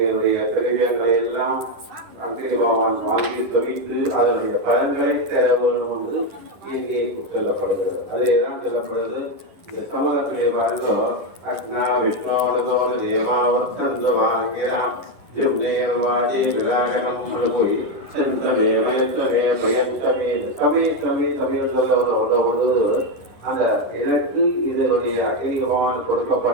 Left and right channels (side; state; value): left; late; 10 ms